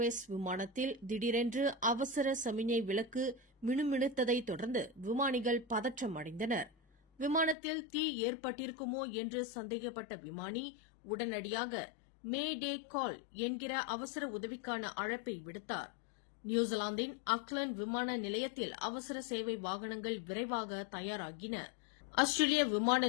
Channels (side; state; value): right; drops out; at 7.6 s